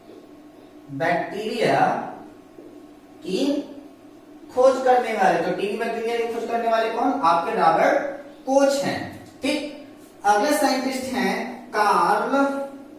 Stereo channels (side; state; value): both; identical; correlation 1.00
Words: बैक्टीरिया की खोज करने वाले। तो टीबी बैक्टीरिया की खोज करने वाले कौन? आपके रॉबर्ट कोच हैं। ठीक, अगले साइंटिस्ट हैं कार्ल